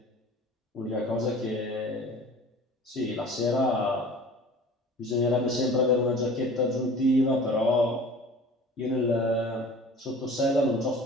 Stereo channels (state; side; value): normal; both; correlation 0.43